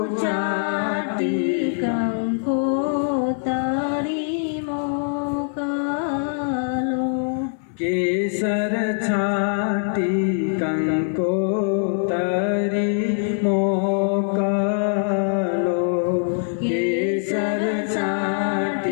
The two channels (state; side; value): silent; right; 64 dB below the other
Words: ચાટી મોકલો કેસર